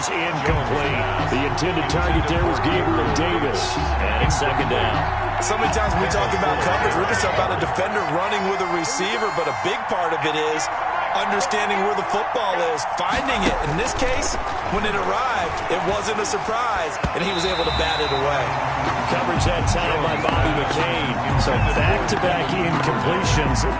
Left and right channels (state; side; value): identical; both; correlation 1.00